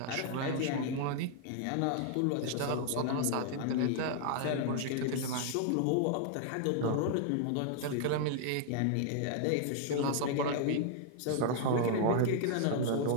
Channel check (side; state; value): both; different; correlation -0.01